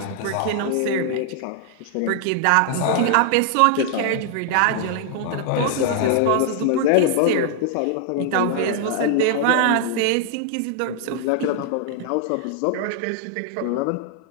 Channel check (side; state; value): both; different; correlation 0.00